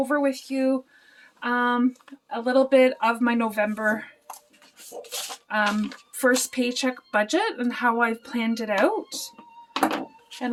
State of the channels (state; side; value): identical; both; correlation 1.00